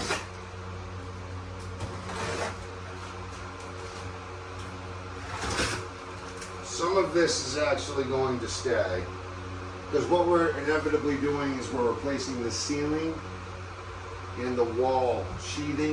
Some of this is actually going to stay, because what we're inevitably doing is we're replacing the ceiling and the wall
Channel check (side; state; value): both; identical; correlation 1.00